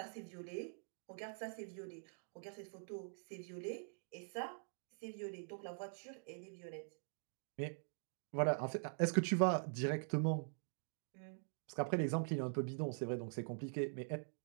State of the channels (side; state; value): left; silent; digital silence